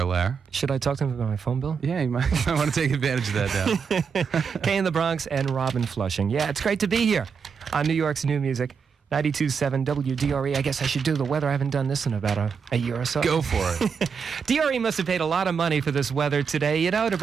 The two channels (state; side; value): quieter; left; 6.2 dB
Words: Lair. Should I talk to him about my phone bill? Yeah, you might want to take advantage of that now. Kay in the Bronx and Robin Flushing. Yeah, it's great to be here on New York's new music. 92.7 WDRE. I guess I should do the weather. I haven't done this in about a year or so. Go for it. DRE must have paid a lot of money for this weather today, to